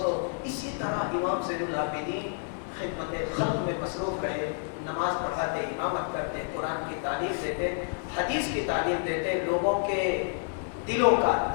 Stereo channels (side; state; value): right; silent; 58 dB below the other